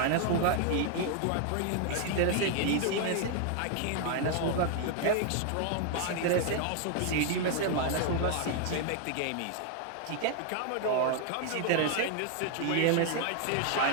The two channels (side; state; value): both; different; correlation 0.00